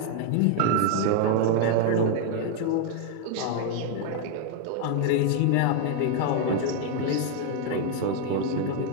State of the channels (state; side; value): different; both; correlation 0.00